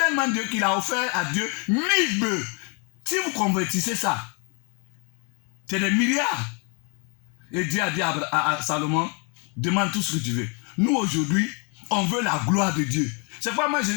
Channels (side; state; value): right; quieter; 35.4 dB